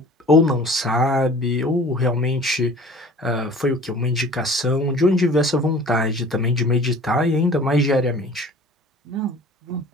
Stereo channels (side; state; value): both; normal; correlation 0.46